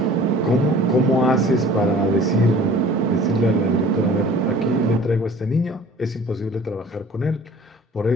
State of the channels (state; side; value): normal; both; correlation 0.48